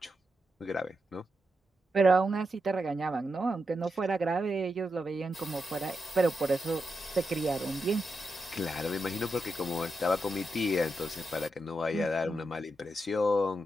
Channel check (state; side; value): normal; both; correlation 0.86